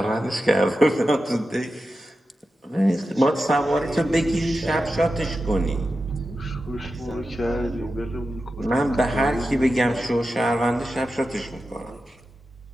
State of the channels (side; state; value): both; normal; correlation 0.91